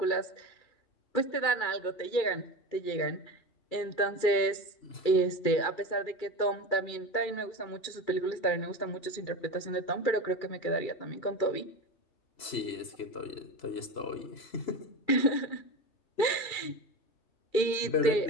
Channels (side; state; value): right; late; 2.4 ms